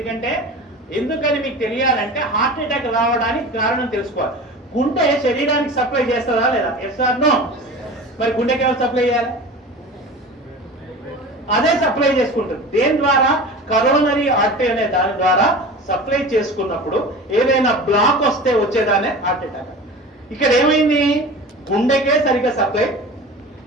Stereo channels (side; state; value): both; normal; correlation 0.35